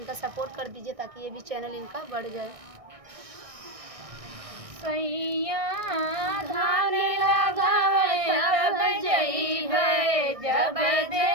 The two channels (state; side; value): late; left; 1.6 ms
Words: सपोर्ट कर दीजिए ताकि ये भी चैनल इनका बढ़ जाए। सैया धान लगावे तब जइबे जब